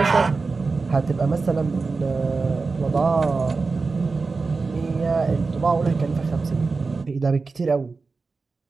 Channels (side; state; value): left; quieter; 4.2 dB